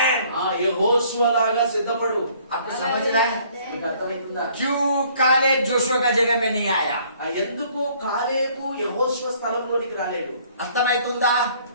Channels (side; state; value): both; inverted; correlation -0.60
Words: యెహోషువ లాగా సిద్ధపడు. आपको समझ रहा है? మీకు అర్థమవుతుందా? क्यों कालेब जोशुआ का जगह में नहीं आया? ఎందుకు కాలేబు యెహోషువ స్థలంలోనికి రాలేడు? అర్థమవుతుందా?